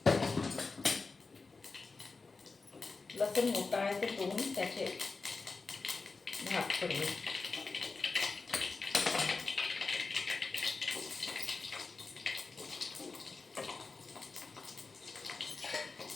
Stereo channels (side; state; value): right; quieter; 4.1 dB